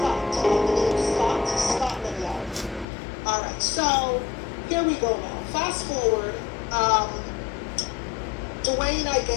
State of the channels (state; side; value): drops out; right; at 2.9 s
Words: Scotland Yard. All right, so here we go now. Fast forward, Dwayne, I